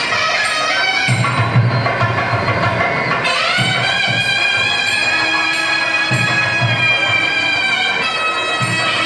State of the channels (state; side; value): noise; right; hum, 28 dB below the sound